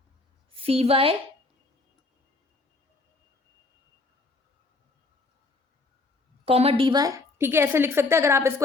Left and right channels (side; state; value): right; quieter; 3.4 dB